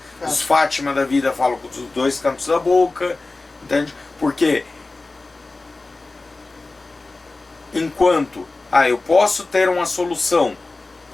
Os Fátima da vida falam com os dois cantos da boca, entende? Porque enquanto eu posso ter uma solução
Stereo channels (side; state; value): right; quieter; 3.4 dB